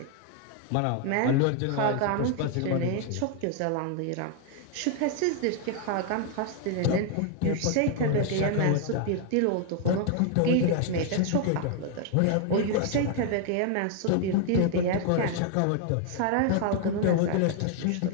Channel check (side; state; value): both; different; correlation 0.00